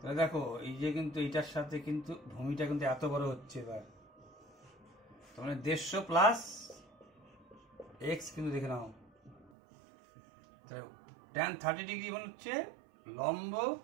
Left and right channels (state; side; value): drops out; left; at 9.5 s